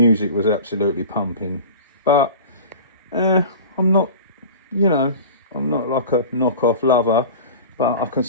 was absolutely pumping. But I'm not, you know, I'm not like a knockoff lover. But I can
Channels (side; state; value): both; inverted; correlation -0.37